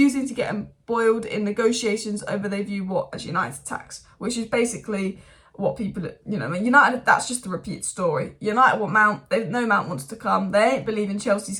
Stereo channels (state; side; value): identical; both; correlation 1.00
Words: to get embroiled in negotiations over they view what as United tax, which is basically what people, you know, United, that's just a repeat story. United want Mount, they know Mount wants to come, they ain't believing Chelsea's